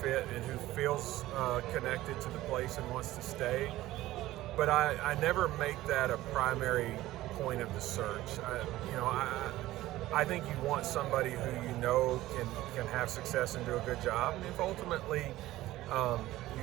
and who feels connected to the place and wants to stay. But I never make that a primary point of the search. I think you want somebody who can have success and do a good job. And if ultimately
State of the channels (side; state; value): left; quieter; 16.1 dB